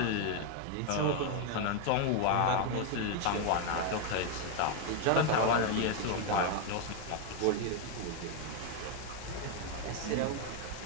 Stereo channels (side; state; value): both; different; correlation 0.01